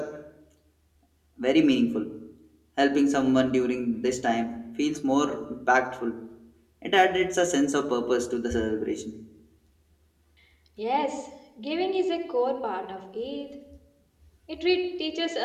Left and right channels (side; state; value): both; identical; correlation 1.00